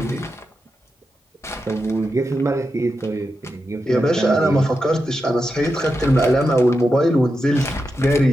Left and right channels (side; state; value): both; normal; correlation 0.88